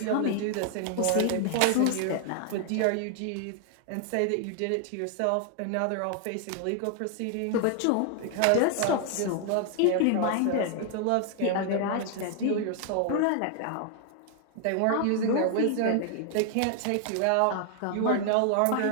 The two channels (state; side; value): different; both; correlation 0.00